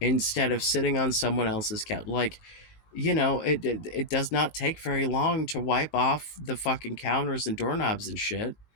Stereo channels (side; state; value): right; late; 19 ms